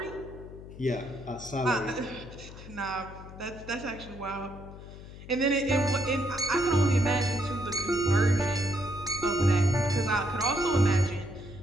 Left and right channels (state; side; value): noise; left; hum, 15 dB below the sound